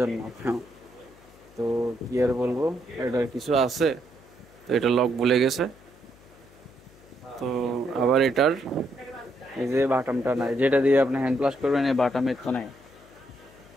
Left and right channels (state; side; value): noise; left; hum, 25 dB below the sound